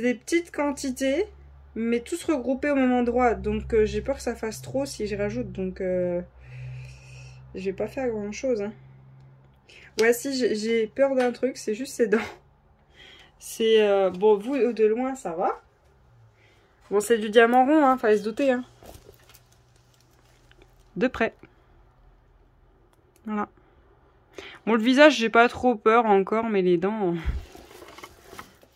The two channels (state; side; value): identical; both; correlation 1.00